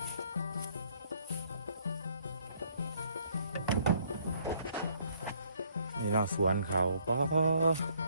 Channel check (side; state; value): both; inverted; correlation -0.65